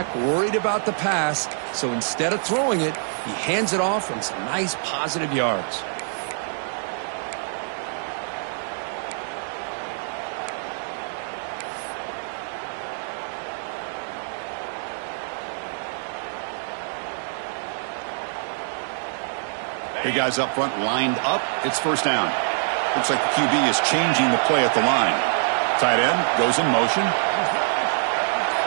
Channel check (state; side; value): silent; left; digital silence